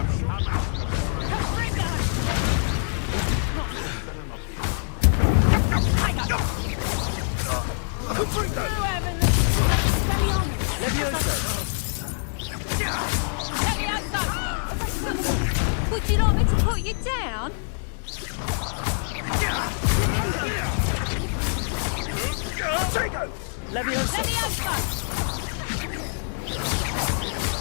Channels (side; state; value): right; silent; digital silence